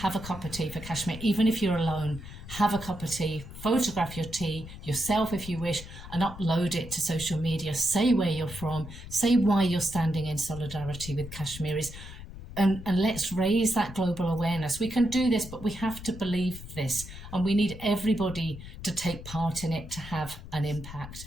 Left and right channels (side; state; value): left; noise; rumble, 13 dB below the sound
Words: a cup of tea for Kashmir. Even if you're alone, have a cup of tea, photograph your tea yourself if you wish, and upload it to social media. Say where you're from, say why you're standing in solidarity with Kashmiris. And let's raise that global awareness. We can do this, but we have to believe this. And we need everybody to take part in it to have an impact.